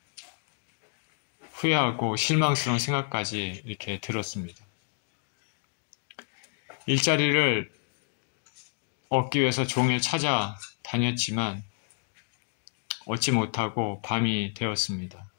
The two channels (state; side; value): silent; right; 58 dB below the other